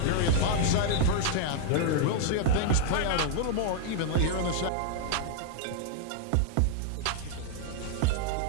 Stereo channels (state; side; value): different; both; correlation 0.00